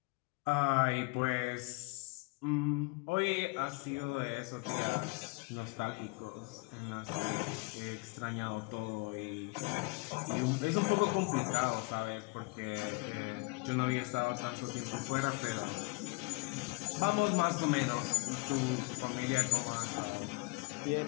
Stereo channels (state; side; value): quieter; right; 27.9 dB